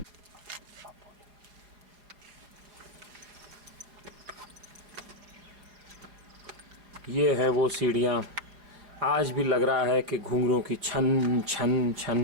ये है वो सीढ़ियाँ। आज भी लग रहा है कि घुंघरों की छन छन छन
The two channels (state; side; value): late; left; 4.8 ms